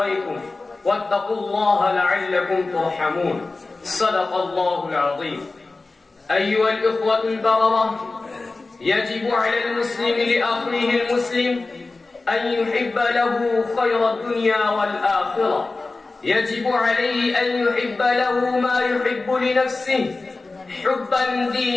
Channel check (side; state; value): right; quieter; 3.5 dB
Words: واتقوا الله لعلكم ترحمون. صدق الله العظيم. أيها الإخوة البررة، يجب على المسلم لأخيه المسلم أن يحب له خير الدنيا والآخرة. يجب عليه أن يحب له ما يحب لنفسه حبا